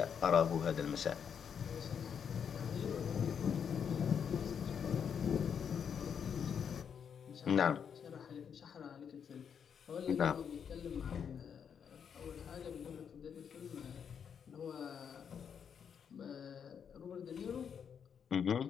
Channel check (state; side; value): quieter; right; 7.4 dB